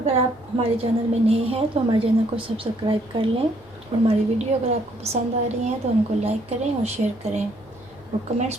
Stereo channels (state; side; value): noise; right; hum, 28 dB below the sound